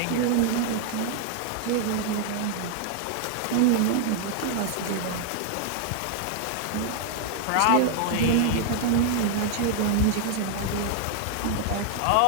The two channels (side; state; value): both; different; correlation 0.00